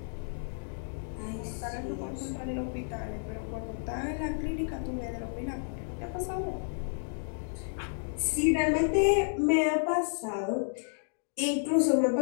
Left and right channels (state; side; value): silent; right; digital silence